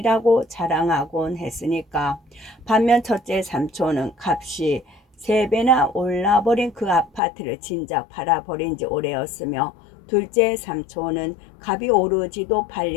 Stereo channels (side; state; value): right; drops out; at 7.2 s